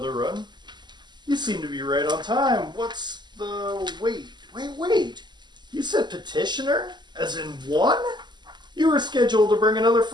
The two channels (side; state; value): left; late; 0.21 ms